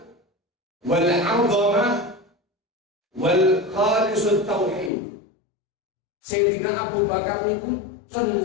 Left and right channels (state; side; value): drops out; right; at 4.9 s